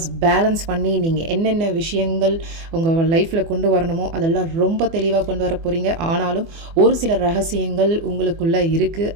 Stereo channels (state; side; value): late; left; 24 ms